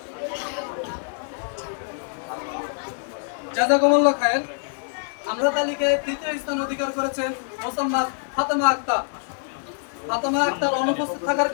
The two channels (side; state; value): right; silent; digital silence